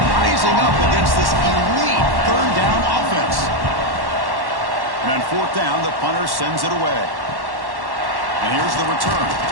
rising up against this elite third down offense. And on fourth down, the punter sends it away. And here's the return.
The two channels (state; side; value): late; left; 1.1 ms